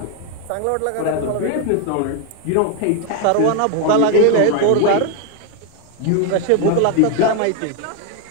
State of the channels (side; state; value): both; different; correlation 0.01